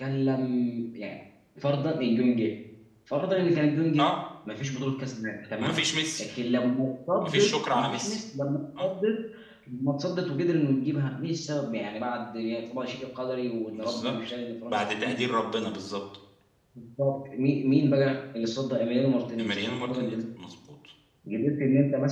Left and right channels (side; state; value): both; identical; correlation 1.00